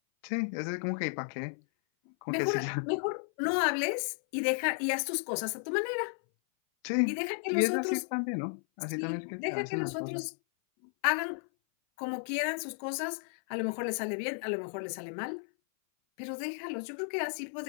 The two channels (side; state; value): right; silent; 55 dB below the other